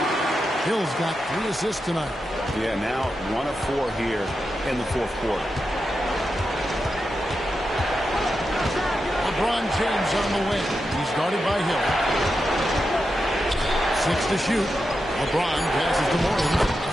Hill's got 3 assists tonight. Yeah, now 1 of 4 here in the fourth quarter. LeBron James on the wing. He's guarded by Hill. 6 to shoot. LeBron passes to Morning.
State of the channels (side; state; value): both; normal; correlation 0.88